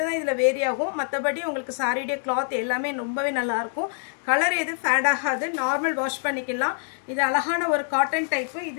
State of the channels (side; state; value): right; silent; 62 dB below the other